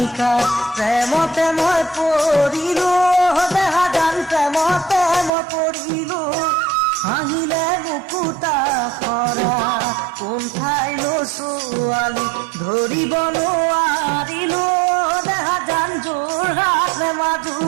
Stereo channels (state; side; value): drops out; left; at 5.3 s